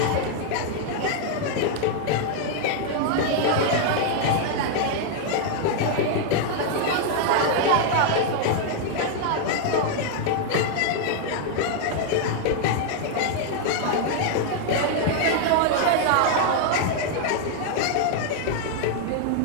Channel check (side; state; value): both; different; correlation 0.00